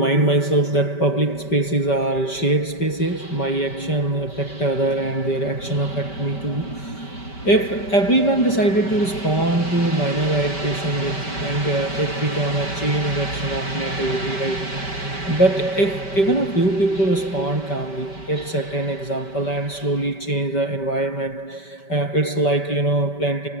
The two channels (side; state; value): right; late; 5.2 ms